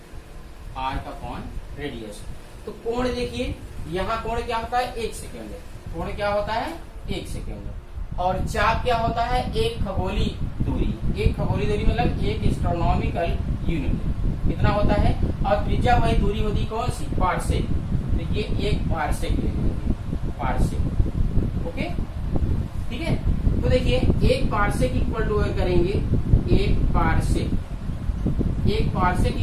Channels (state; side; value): identical; both; correlation 1.00